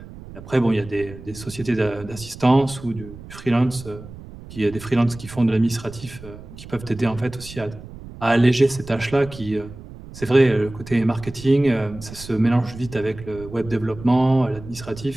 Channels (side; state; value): right; noise; rumble, 15 dB below the sound